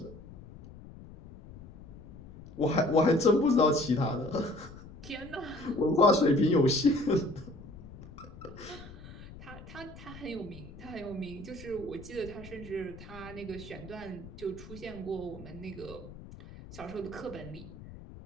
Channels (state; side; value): noise; left; rumble, 16 dB below the sound